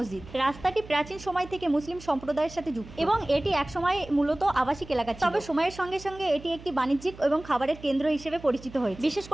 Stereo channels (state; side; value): noise; right; hum, 18 dB below the sound